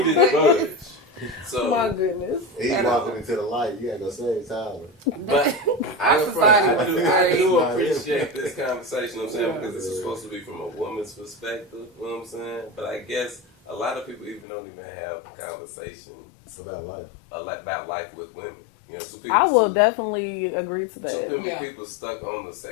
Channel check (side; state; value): right; drops out; at 14.5 s